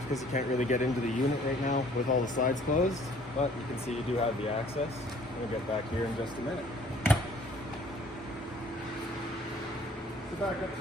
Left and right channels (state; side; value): normal; both; correlation 0.56